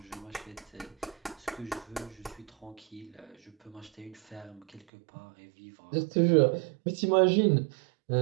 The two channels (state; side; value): drops out; left; at 4.8 s